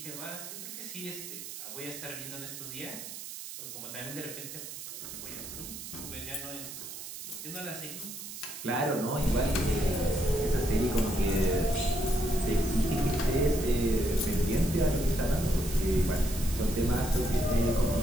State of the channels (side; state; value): right; noise; hiss, 10 dB below the sound